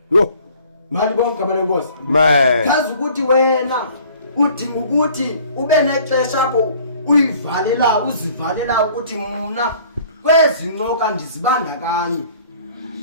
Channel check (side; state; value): both; inverted; correlation -0.53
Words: Yo. Mali bonke igama lenkosi. Amen. Kazi ukuthi wena udinga ukuthi ube nexesha apho uyivalela uzivalela ukuthi mina kwezincoka ndizibandakanye.